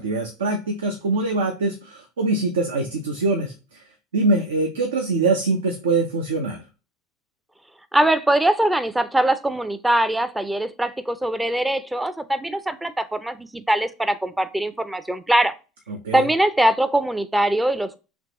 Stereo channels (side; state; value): both; normal; correlation 0.53